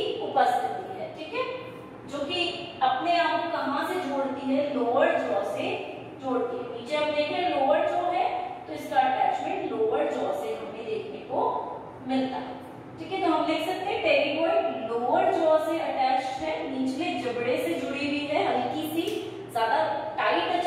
उपस्थिति है। ठीक है, जो कि अपने आप को कहां से जोड़ती है? लोअर जॉ से जोड़ती है। नीचे हम देख रहे हैं लोअर जॉ है तो इसका अटैचमेंट लोअर जॉ से हमें देखने को मिलता है। ठीक है, तो हम लिख सकते हैं टेरिगॉइड लोअर जॉ से अटैच्ड है, निचले जबड़े से जुड़ी हुई है, हल्की सी, ज्यादा टाइट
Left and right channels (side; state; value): both; identical; correlation 1.00